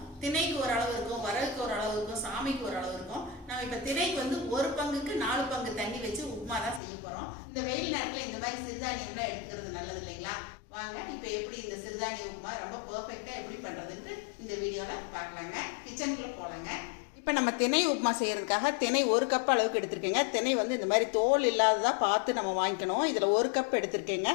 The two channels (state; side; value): drops out; right; at 6.8 s